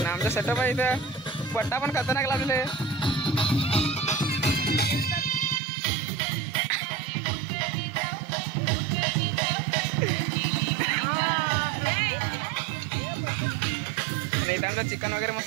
सेटअप आहे इथं पट्टा पण खतरनाक लागले आमचा चिकन वगैरे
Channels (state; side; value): drops out; left; at 5.6 s